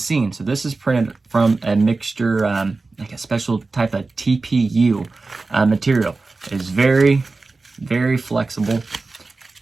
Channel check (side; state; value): left; quieter; 3.7 dB